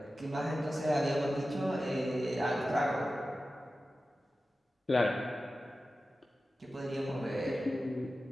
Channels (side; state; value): both; normal; correlation 0.94